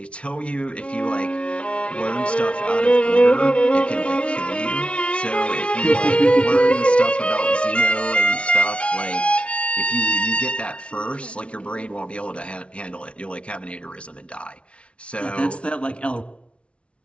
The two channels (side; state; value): right; late; 0.060 ms